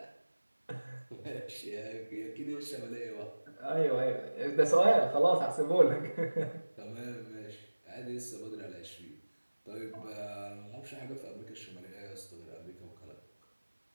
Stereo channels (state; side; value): inverted; both; correlation -1.00